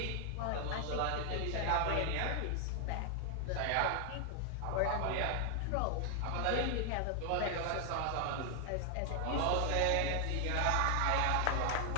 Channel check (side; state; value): both; different; correlation 0.00